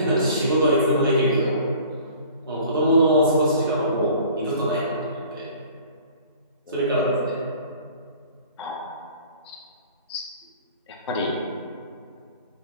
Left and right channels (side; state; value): both; inverted; correlation -0.48